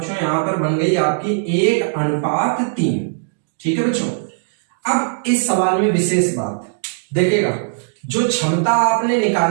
यहां पर बन गई आपकी 1:3। ठीक है बच्चों। अब इस सवाल में विशेष बात देखिएगा, जो क्षमता आपने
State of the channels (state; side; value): silent; left; digital silence